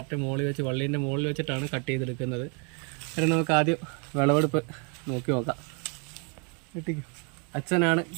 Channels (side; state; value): left; quieter; 36.8 dB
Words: മുകളിൽ വെച്ച് വള്ളീൻ്റെ മുകളിൽ വെച്ചിട്ടാണ് കട്ട് ചെയ്തെടുക്കുന്നത്. അതിന് നമുക്ക് ആദ്യം വിളവെടുപ്പ് നോക്കി നോക്കാം. വെട്ടിക്കും. അച്ഛനാണ്